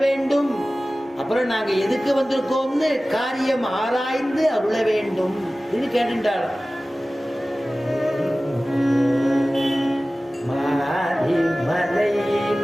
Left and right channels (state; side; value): normal; both; correlation 0.97